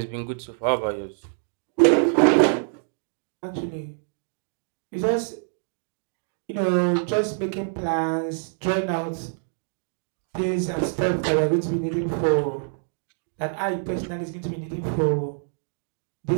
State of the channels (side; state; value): left; silent; digital silence